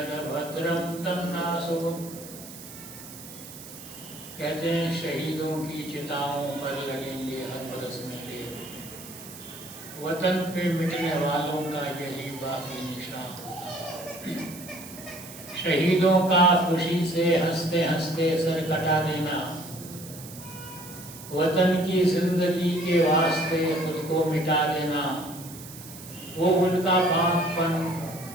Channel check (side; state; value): right; noise; hiss, 15 dB below the sound